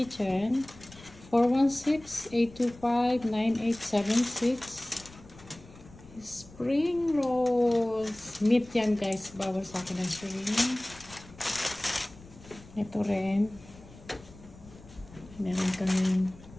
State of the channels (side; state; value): left; noise; rumble, 21 dB below the sound